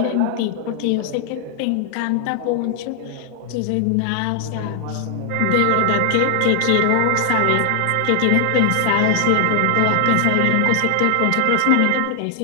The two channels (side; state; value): both; different; correlation 0.00